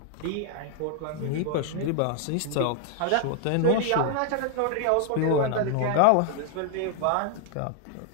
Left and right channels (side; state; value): both; different; correlation 0.00